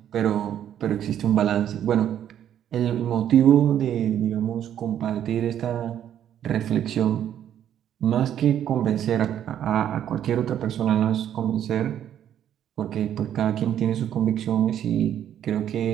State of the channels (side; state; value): left; quieter; 10.3 dB